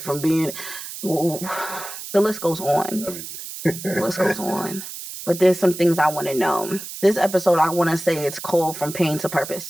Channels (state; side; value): noise; right; hiss, 10 dB below the sound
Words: being... the list goes on. The list goes on. But there's some things I want to know. This episode, I want to say it's called From Pain to